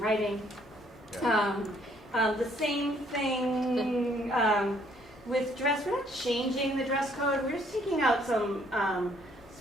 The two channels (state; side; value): normal; both; correlation 0.65